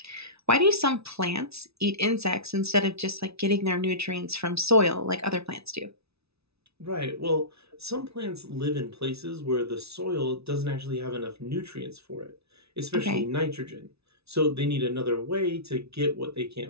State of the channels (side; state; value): left; late; 0.79 ms